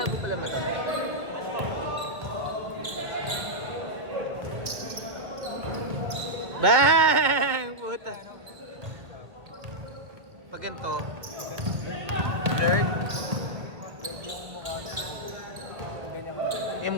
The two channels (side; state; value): left; late; 1.5 ms